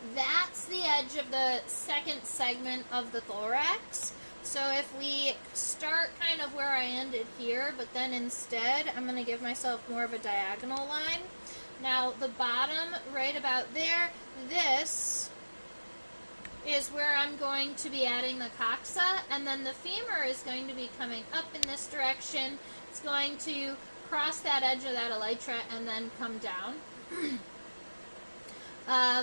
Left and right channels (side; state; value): both; inverted; correlation -1.00